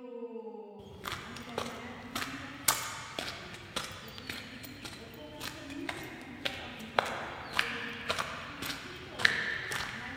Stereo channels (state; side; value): identical; both; correlation 1.00